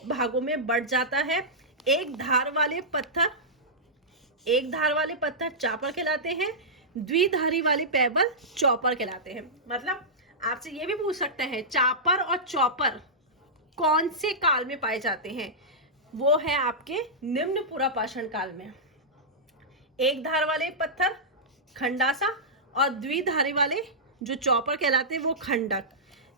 भागों में बढ़ जाता है, एक धार वाले पत्थर चापर कहलाते हैं, द्विधारी वाले पैबल चौपर कहलाते हैं। मतलब आपसे ये भी पूछ सकते हैं चापर और चौपर कौन से काल में पाए जाते हैं, वो है आपके निम्न पूरा पाषाण काल में। एक धार वाले पत्थर खंडासा और द्विधारी वाले जो चौपर कहलाते हैं वो खंडक।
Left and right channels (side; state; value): both; normal; correlation -0.13